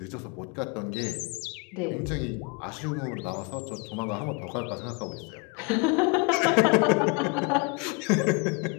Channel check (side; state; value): right; quieter; 31.2 dB